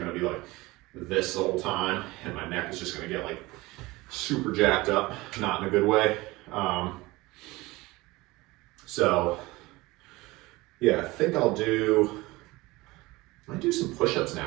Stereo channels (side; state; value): left; quieter; 21.2 dB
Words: be like this the whole time, and my neck is just gonna get like super jacked up, not in a good way. So yeah, I think I might do some push-ups